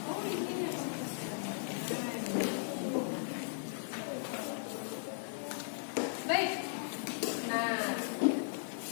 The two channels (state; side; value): silent; right; digital silence